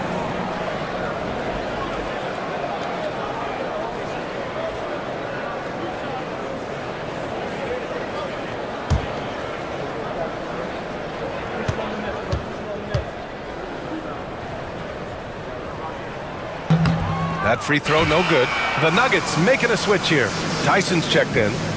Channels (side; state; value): both; identical; correlation 1.00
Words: That free throw no good. The Nuggets making a switch here. Tyson's checked in.